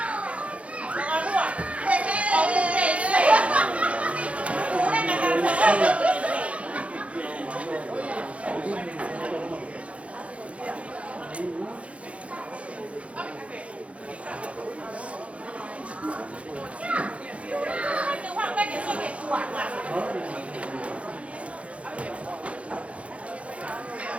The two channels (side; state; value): left; late; 0.063 ms